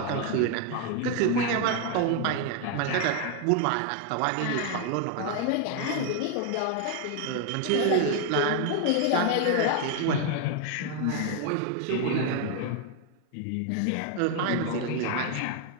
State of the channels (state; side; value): different; both; correlation 0.00